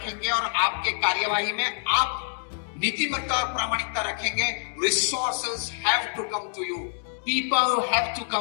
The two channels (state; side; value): silent; right; digital silence